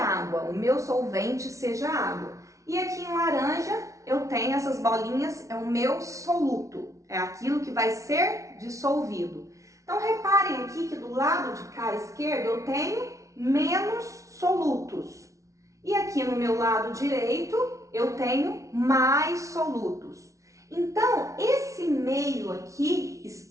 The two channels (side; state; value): left; late; 0.15 ms